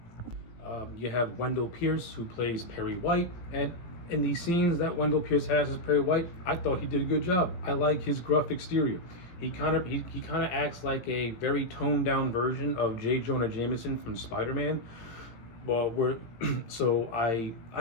You have Wendell Pierce, who plays Perry White, and in the scenes that Wendell Pierce has as Perry White, I thought he did a good job. I like his gruff exterior. He kind of acts like a very toned down version of J. Jonah Jameson from Spider-Man. Well, so I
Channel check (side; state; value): right; late; 17 ms